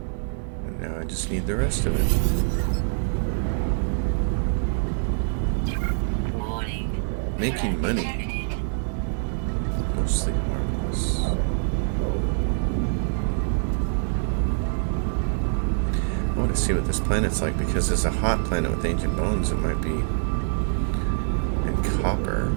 And now I just need the rest of it. Warning. Making money. Detected. Mostly harmless. I want to see what this planet's like because it's a hot planet with ancient bones. It might be. And copper.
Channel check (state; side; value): silent; left; digital silence